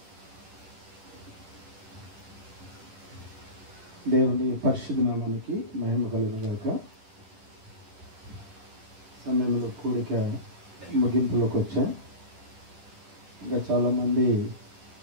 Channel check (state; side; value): late; left; 10 ms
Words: దేవుని పరిశుద్ధ నామానికి మహిమ కలుగుగాక. సమయంలో కూడిక ముగింపులోకి వచ్చా. ఇంకా చాలామంది